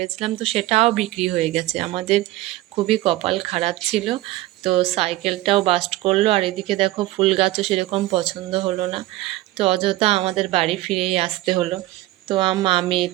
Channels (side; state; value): left; quieter; 17.4 dB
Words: তো সেটাও বিক্রি হয়ে গেছে। আমাদের খুবই কপাল খারাপ ছিল। তো সাইকেলটাও বাস্ট করলো, আর এদিকে দেখো ফুল গাছও সেরকম পছন্দ হলো না, তো অযথা আমাদের বাড়ি ফিরেই আসতে হলো। তো মা